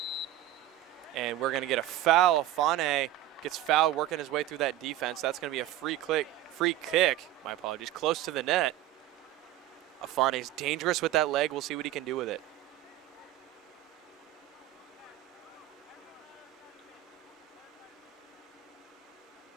And we're going to get a foul. Afane gets fouled working his way through that defense. That's going to be a free kick, my apologies, close to the net. Afane's dangerous with that leg. We'll see what he can do with it.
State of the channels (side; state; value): left; quieter; 13.6 dB